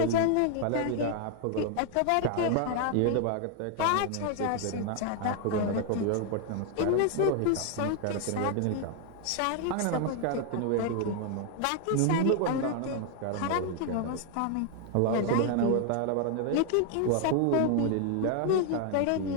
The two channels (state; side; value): different; both; correlation 0.00